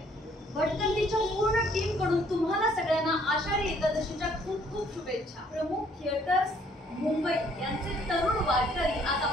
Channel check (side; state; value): both; normal; correlation 0.63